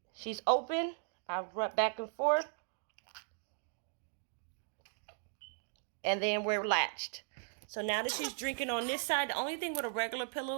She's open. I rub back and forth. And then we're latched. So now that she's drinking on this side, the only thing with a regular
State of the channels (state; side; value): silent; left; digital silence